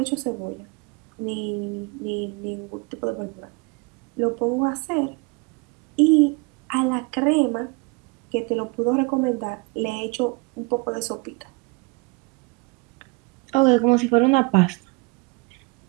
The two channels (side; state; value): left; quieter; 28.4 dB